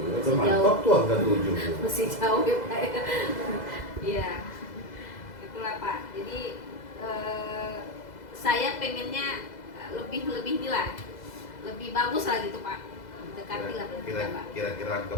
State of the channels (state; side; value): late; right; 2.0 ms